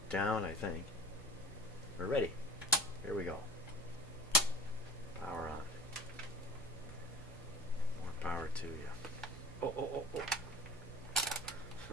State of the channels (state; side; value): noise; right; hum, 19 dB below the sound